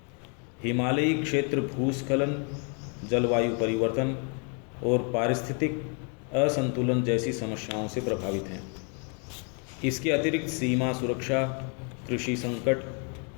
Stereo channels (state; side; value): quieter; right; 38.3 dB